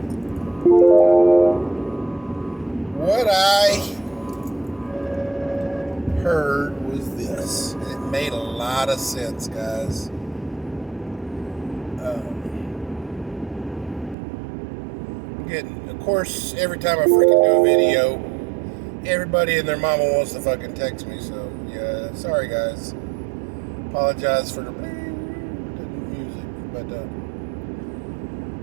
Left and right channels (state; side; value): drops out; left; at 14.2 s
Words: what I heard was this, and it made a lot of sense, guys. Of course, every time I freaking do a video, everybody and their mama wants to fucking text me, so yeah, sorry guys. Apologize for the music, but